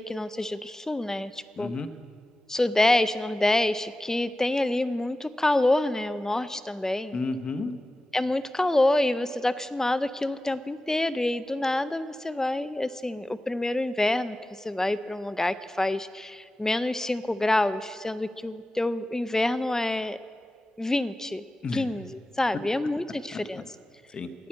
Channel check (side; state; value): both; normal; correlation 0.95